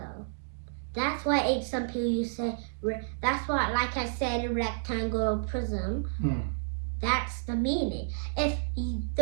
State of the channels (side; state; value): left; silent; digital silence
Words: That's why some people use say. That's why, like I said, a rectangle prism. That's the meaning. If